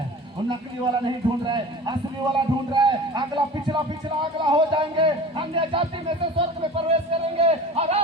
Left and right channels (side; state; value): both; normal; correlation 0.38